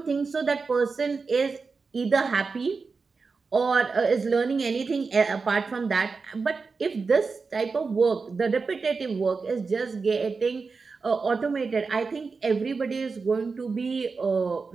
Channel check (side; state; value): left; quieter; 4.6 dB